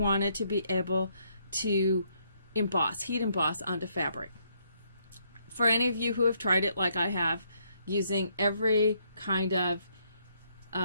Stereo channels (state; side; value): inverted; both; correlation -0.72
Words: to be able to heat emboss onto fabric. For any of you who have tried it like I have, using every kind of